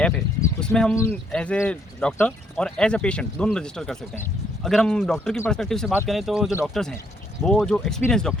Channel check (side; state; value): both; normal; correlation 0.70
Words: ऐप है उसमें हम एज ए डॉक्टर और एज ए पेशेंट दोनों रजिस्टर कर सकते हैं। अगर हम डॉक्टर की पर्सपेक्टिव से बात करें तो जो डॉक्टर्स हैं वो जो एक्सपीरियंस